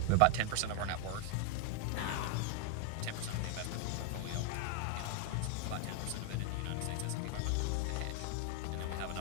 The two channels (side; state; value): both; different; correlation 0.00